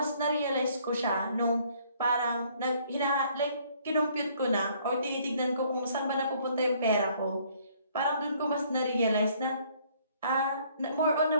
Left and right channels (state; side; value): inverted; both; correlation -0.62